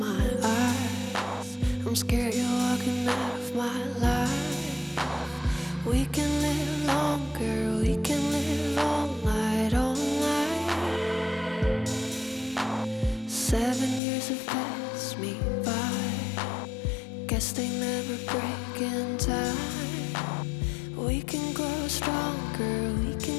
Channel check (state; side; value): drops out; right; at 14.0 s